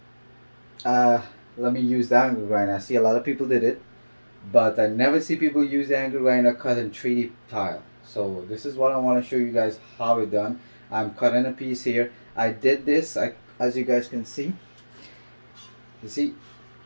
let me use the angle grinder. I see a lot of people did it, but I never see people use the angle grinder cut in 3D tile. So this is what I want to show you guys how it done. I'm cutting a piece here. I did this, as you guys can see. You see,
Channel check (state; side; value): inverted; both; correlation -1.00